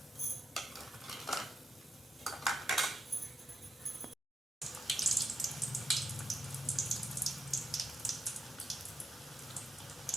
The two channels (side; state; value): both; normal; correlation 0.83